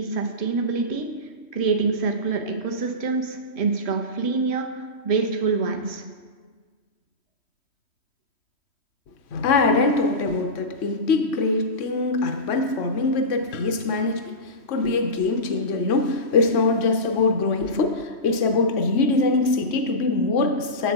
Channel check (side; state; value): right; late; 3.1 ms